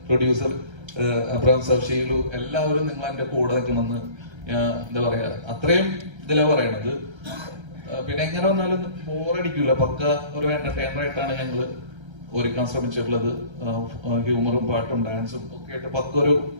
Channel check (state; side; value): late; left; 1.3 ms